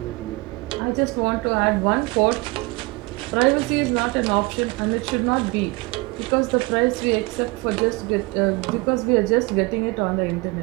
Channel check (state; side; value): quieter; left; 25.0 dB